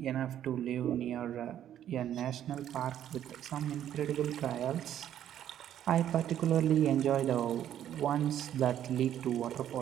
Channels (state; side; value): quieter; left; 10.8 dB